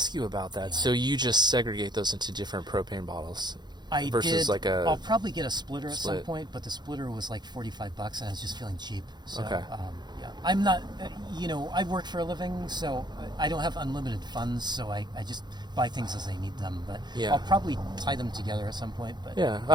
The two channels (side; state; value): left; late; 0.21 ms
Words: you about that. So you just segregate those into different propane bottles I versus did. like a... I'll probably get a splitter at some split. point, but the splitter was like $45, and I was just feeling cheap. So, Okay. yeah, I'm not. I work for a living, so I don't have unlimited funds. So I just buy things as I need them. But Yeah. I'll probably tie them together at some point. But Yeah,